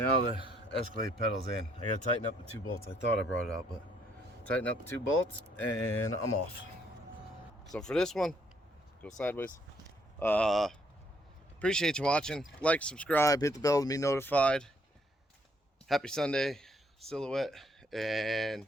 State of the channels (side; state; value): both; normal; correlation 0.69